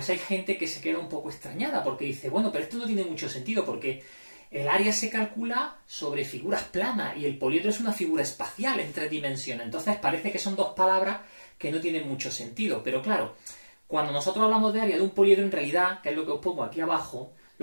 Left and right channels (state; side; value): inverted; both; correlation -1.00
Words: hay gente que se queda un poco extrañada, porque dice, bueno, pero esto no tiene mucho sentido, porque el área se calcula sobre figuras planas y el poliedro es una figura espacial en 3 dimensiones. Entonces parece que son dos palabras que no tienen mucho sentido. Pero claro, cuando nosotros hablamos de área de un poliedro, en realidad, que es lo que os pongo aquí abajo,